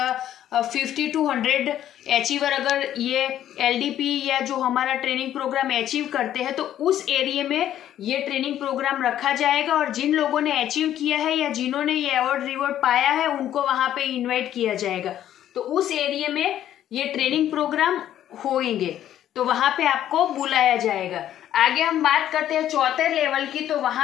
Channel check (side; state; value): right; quieter; 11.5 dB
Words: 50 to 100 अचीवर अगर ये एलडीपी या जो हमारा ट्रेनिंग प्रोग्राम अचीव करते हैं तो उस एरिया में ये ट्रेनिंग प्रोग्राम रखा जाएगा, और जिन लोगों ने अचीव किया है या जिन्होंने ये अवार्ड रिवॉर्ड पाया है उनको वहां पे इनवाइट किया जाएगा। तो उस एरिया में ये ट्रेनिंग प्रोग्राम होंगे तो वहां पे आपको बुलाया जाएगा। आगे हम बात करते हैं चौथे लेवल की, तो